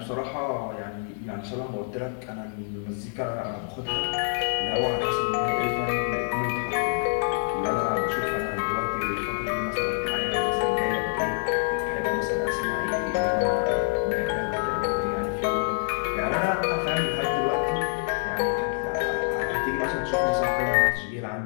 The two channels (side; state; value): right; silent; 61 dB below the other